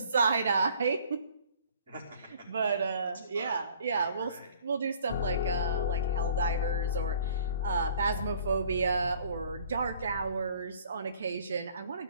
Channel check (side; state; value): both; inverted; correlation -0.54